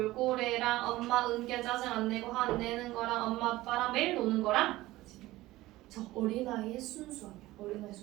엄마 은기야 짜증 안 내고 화 안 내는 거랑 엄마 아빠랑 매일 노는 거랑. 저 어린아이의 순수함이야. 어린아이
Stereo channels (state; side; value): quieter; left; 17.6 dB